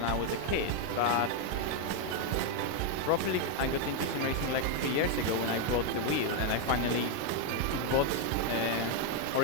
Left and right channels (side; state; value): both; different; correlation 0.01